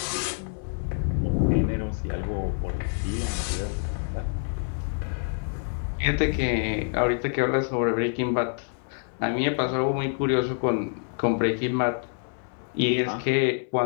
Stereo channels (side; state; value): right; silent; 60 dB below the other